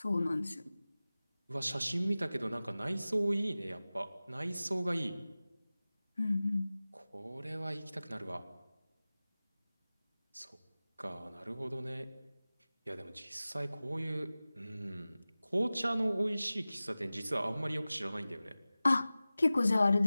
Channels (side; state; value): both; inverted; correlation -0.97